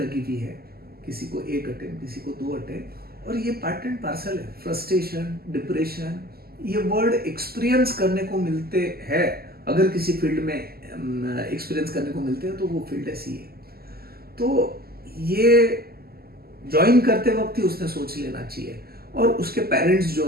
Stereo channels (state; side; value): late; left; 0.45 ms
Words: हुई है, किसी को 1 अटेम्प्ट, किसी को 2 अटेम्प्ट, और ये पार्ट एंड पार्सल है। फ्रस्ट्रेशन, डिप्रेशन, ये वर्ड एक्सपीरियंस करने को मिलते हैं। अगर किसी फील्ड में एक्सपीरियंस करने को मिलते हैं तो वो फील्ड है सीए। तो ये ज्वाइन करते वक्त ही उसने सोच लेना चाहिए, और उसके पेरेंट्स